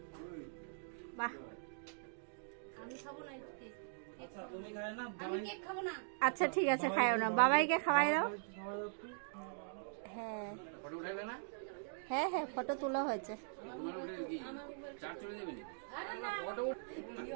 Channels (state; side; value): silent; left; digital silence